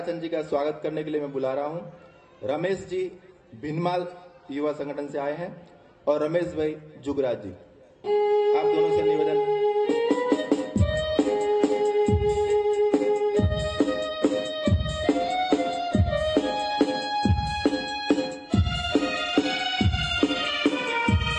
जी का स्वागत करने के लिए मैं बुला रहा हूं। रमेश जी भिनमाल युवा संगठन से आए हैं और रमेश भाई जुगराज जी। आप दोनों से निवेदन।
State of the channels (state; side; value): identical; both; correlation 1.00